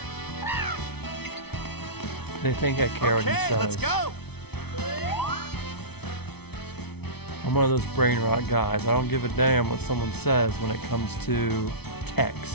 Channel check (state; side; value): late; right; 0.98 ms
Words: They think I care what he says. Let's go. I'm one of those brain rot guys. I don't give a damn what someone says when it comes to